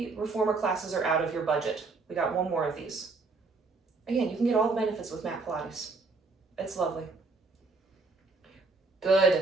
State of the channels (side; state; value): left; quieter; 3.9 dB